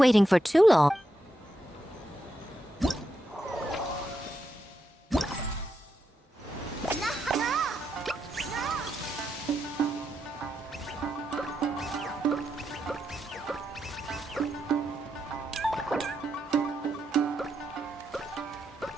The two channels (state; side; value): normal; both; correlation 0.83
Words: for too long.